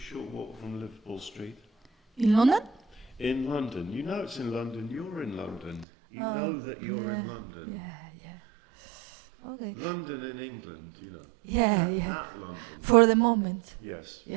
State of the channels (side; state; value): left; drops out; at 5.9 s